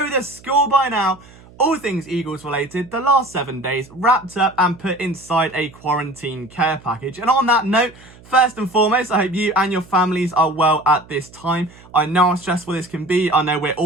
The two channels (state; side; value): noise; right; hum, 23 dB below the sound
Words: the score by now. All things Eagles related, the last 7 days wrapped up and put inside a quarantine care package. And on that note, first and foremost, I hope you and your families are well at this time. I know how stressful this can be. I know we're